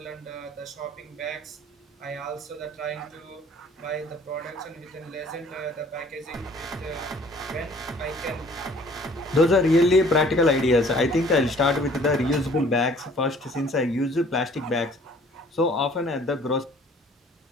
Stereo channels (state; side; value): normal; both; correlation 0.54